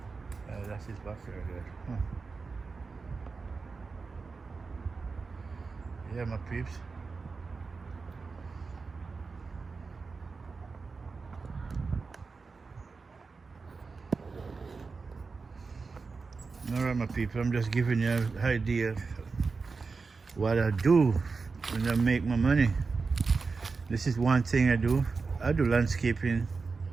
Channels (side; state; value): left; quieter; 4.5 dB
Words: That's his backyard there. Huh. Yeah, my peeps. Alright, my people, I'm just giving you an idea of what I do when I make my money. This is one thing I do. I do landscaping.